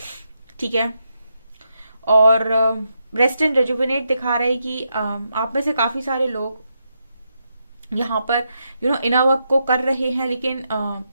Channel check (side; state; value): both; inverted; correlation -0.83